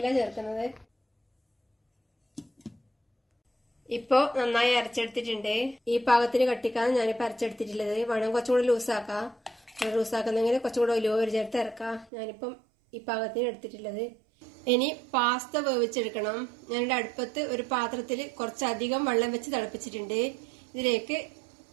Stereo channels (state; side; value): drops out; left; at 12.1 s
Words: ചേർക്കുന്നത്. ഇപ്പോ നന്നായി അരച്ചെടുത്തിട്ടുണ്ട്. ഈ പാകത്തിന് കട്ടിക്കാണ് ഞാനിപ്പോൾ അരച്ചെടുത്തിട്ടുള്ളത്. വേണം കുറച്ചുകൂടി ലൂസാക്കാം. ലൂസാക്കുന്നെങ്കിൽ കുറച്ചുകൂടെ ഒലിവ് ഓയിൽ ചേർത്ത് ഇറക്കാം. ഞാനിപ്പം ഈ പാകത്തിന് എടുത്തിട്ടുള്ളത്. ഇനി പാസ്ത വേവിച്ചെടുക്കണം. ഞാനിവിടെ അടുപ്പത്ത് ഒരു പാത്രത്തിൽ കുറച്ചധികം വെള്ളം വെച്ച് തിളപ്പിച്ചിട്ടുണ്ട്. ഇതിലേക്ക്